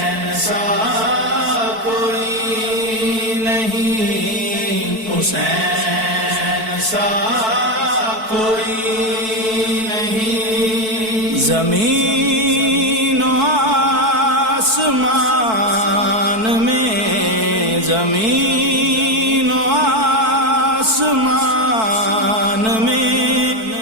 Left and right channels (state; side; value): late; left; 4.6 ms